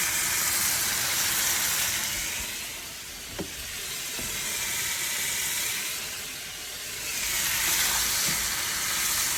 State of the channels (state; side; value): identical; both; correlation 1.00